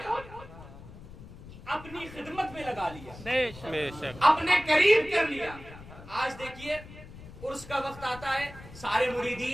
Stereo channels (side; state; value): left; noise; rumble, 16 dB below the sound